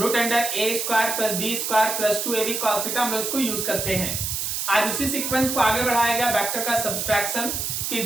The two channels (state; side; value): noise; right; hiss, 2 dB below the sound